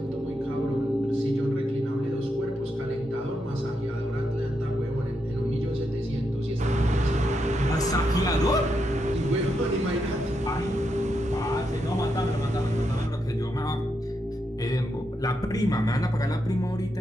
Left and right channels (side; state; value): both; normal; correlation 0.82